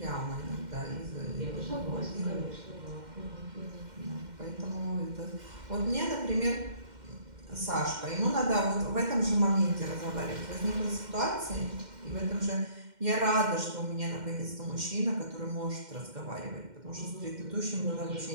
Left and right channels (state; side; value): late; left; 2.1 ms